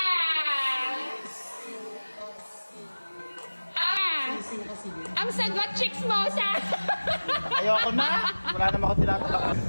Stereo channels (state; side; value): inverted; both; correlation -1.00